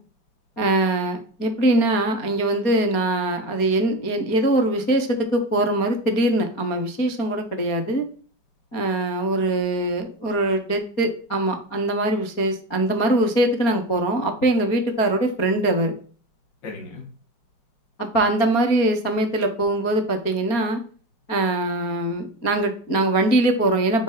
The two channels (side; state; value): right; late; 4.3 ms